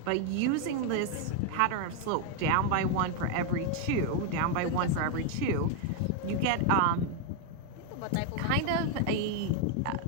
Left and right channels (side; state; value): both; different; correlation 0.01